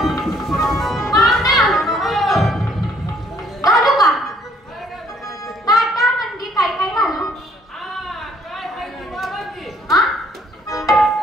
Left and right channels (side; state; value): both; normal; correlation 0.64